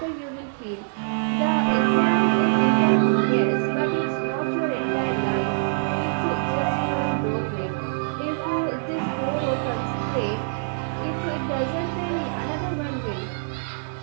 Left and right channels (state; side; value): silent; left; 62 dB below the other